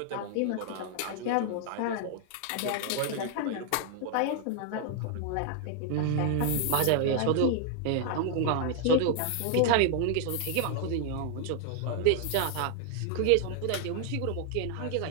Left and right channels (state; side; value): different; both; correlation 0.00